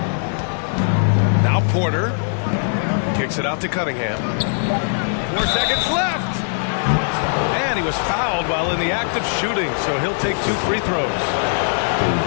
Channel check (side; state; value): right; silent; digital silence